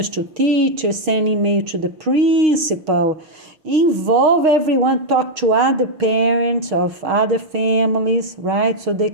to teachers, send email to the principal, involve everyone, talk to other parents of other families, right? So they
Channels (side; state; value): left; late; 6.4 ms